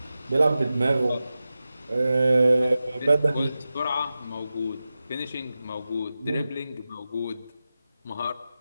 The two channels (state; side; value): inverted; both; correlation -0.94